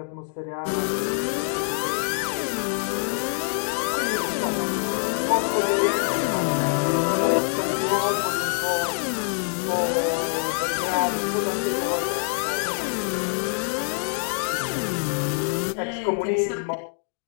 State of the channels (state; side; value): silent; right; digital silence